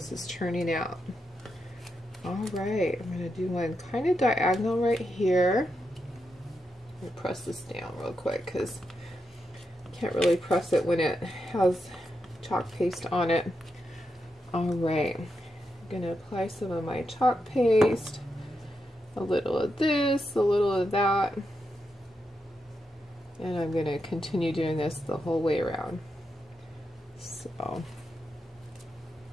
is turning out. Alright, I'm going to do one kind of diagonal right here. Let me press this down real quick because I can't really press it when it has chalk paste on it. Alright, I'm going to apply some of my chalk paste. A little of this, a little of that. And I'm going to continue doing this the whole way around. So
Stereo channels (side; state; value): both; normal; correlation 0.85